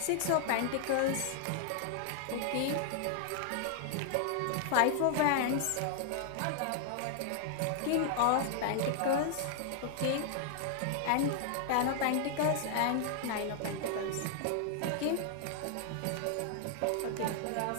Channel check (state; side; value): different; both; correlation -0.01